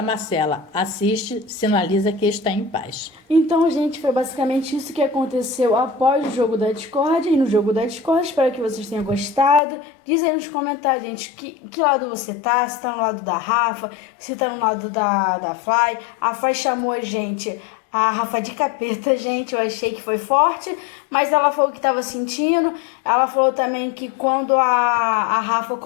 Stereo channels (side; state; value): right; drops out; at 9.6 s